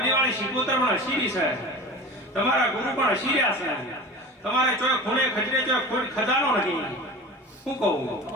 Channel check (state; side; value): normal; both; correlation 0.34